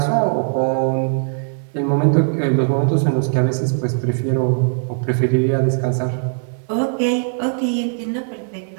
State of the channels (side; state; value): left; silent; 60 dB below the other